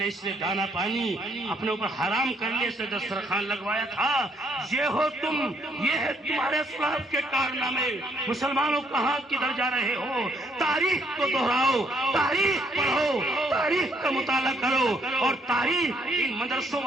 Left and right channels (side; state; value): both; normal; correlation 0.69